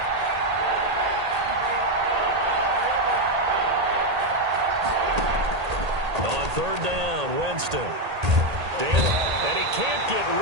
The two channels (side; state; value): left; late; 1.8 ms